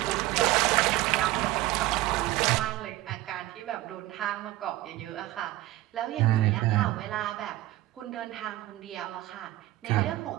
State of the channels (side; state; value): left; quieter; 16.4 dB